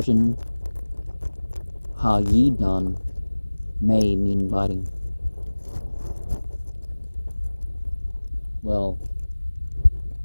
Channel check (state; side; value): inverted; both; correlation -1.00